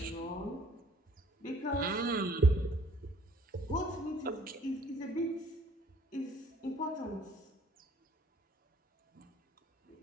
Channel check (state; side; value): normal; both; correlation 0.58